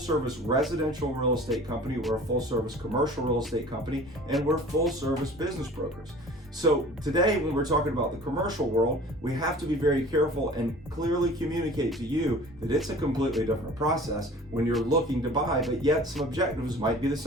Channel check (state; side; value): noise; left; rumble, 22 dB below the sound